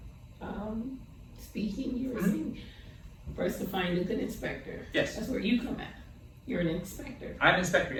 speaking, you were saying first to find a good inspector. Yes. That's where you come at. You're an inspector. I'm an inspector,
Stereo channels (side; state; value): both; identical; correlation 1.00